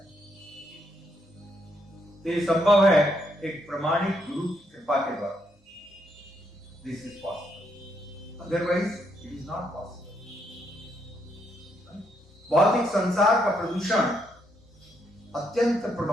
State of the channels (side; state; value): both; normal; correlation 0.76